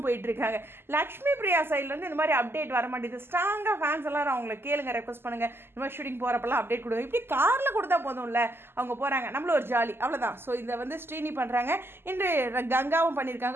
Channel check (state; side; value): late; left; 0.11 ms